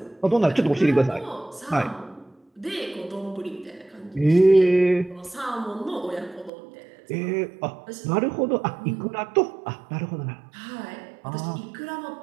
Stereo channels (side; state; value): left; drops out; at 6.5 s